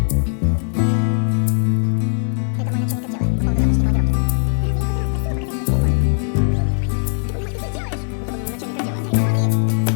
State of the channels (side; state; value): right; silent; digital silence